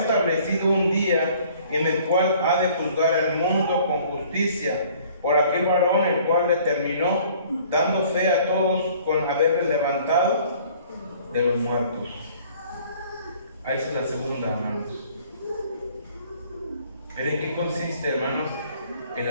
un día en el cual ha de juzgar al mundo con justicia, por aquel varón el cual determinó, dando fe a todos con haberle levantado de los muertos. Ahí es la segunda, hermanos. ¿Pero en qué consiste, hermanos, el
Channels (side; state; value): both; inverted; correlation -0.54